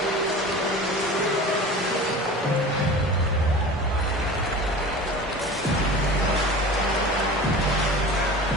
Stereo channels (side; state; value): both; normal; correlation 0.36